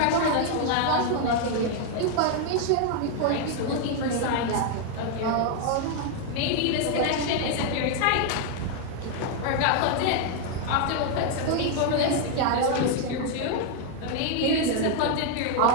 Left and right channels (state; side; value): different; both; correlation 0.00